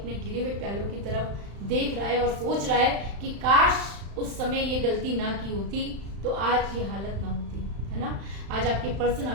गिरे हुए प्यालों की तरफ देख रहा है और सोच रहा है कि काश उस समय ये गलती ना की होती तो आज ये हालत ना होती, है ना। आज आपके पर्सन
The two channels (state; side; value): late; left; 35 ms